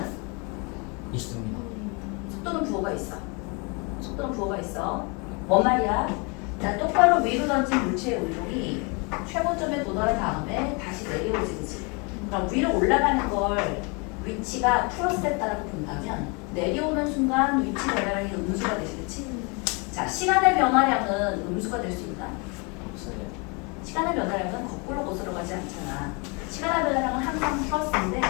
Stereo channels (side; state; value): right; quieter; 31.6 dB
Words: 있습니다. 속도는 부호가 있어. 속도는 부호가 있어. 뭔 말이야? 자, 똑바로 위로 던진 물체의 운동이 최고점에 도달한 다음에 다시 내려오지, 그치? 그럼 위로 올라가는 걸 위치가 플러스에 따라고 본다면 내려오는 순간 위치 변화량이 음수가 되지, 그치? 자, 시간의 변화량은 음수가 될 수 있나? 없어요. 시간의 변화량은 거꾸로 거슬러 가지 않잖아. 시간의 변화량은 항상 플러스인데